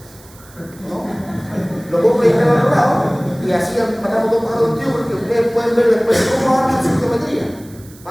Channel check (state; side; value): noise; right; hiss, 24 dB below the sound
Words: ¿no? Lo puedo proyectar al otro lado y así matamos dos pájaros de un tiro, porque ustedes pueden ver después cómo arman su geometría,